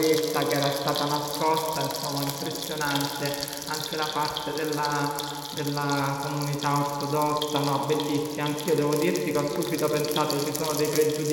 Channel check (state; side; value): identical; both; correlation 1.00